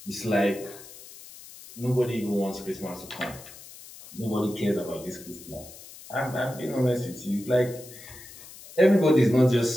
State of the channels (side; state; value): left; noise; hiss, 18 dB below the sound